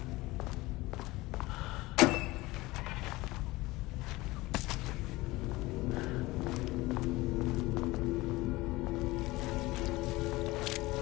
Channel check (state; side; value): quieter; right; 20.2 dB